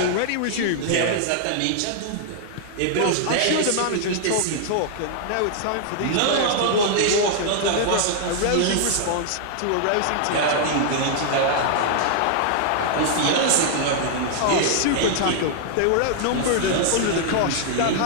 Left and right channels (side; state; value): both; different; correlation -0.01